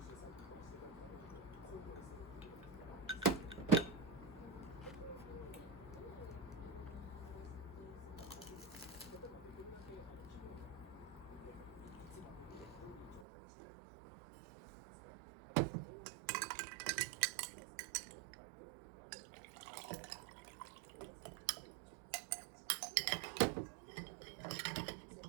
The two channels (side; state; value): left; drops out; at 13.2 s